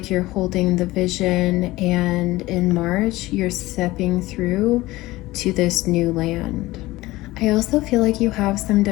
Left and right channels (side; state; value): right; quieter; 18.6 dB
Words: you're holding the vision, and in March, you're stepping through to this new land. I also feel like you have some